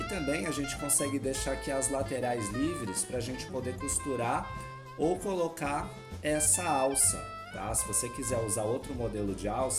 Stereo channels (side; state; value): both; identical; correlation 1.00